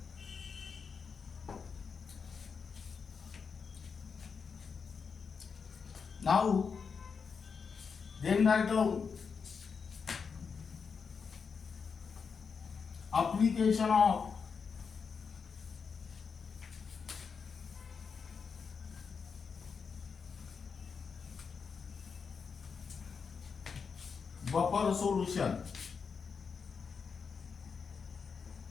Now, then write down application of buffer solution.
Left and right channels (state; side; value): quieter; right; 5.7 dB